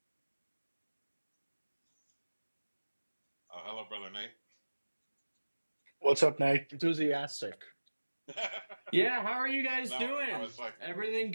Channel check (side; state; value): both; inverted; correlation -1.00